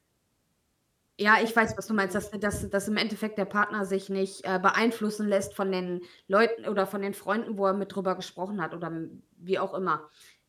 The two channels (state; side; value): identical; both; correlation 1.00